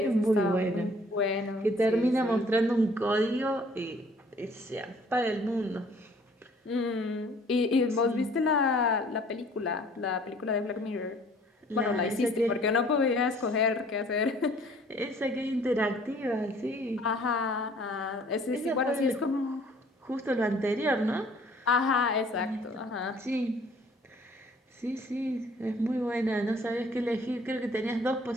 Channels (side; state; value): both; normal; correlation 0.56